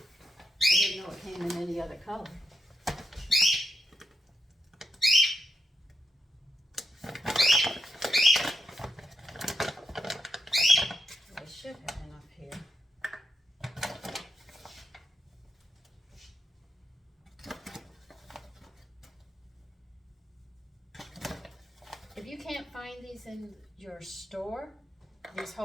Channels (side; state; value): both; normal; correlation 0.84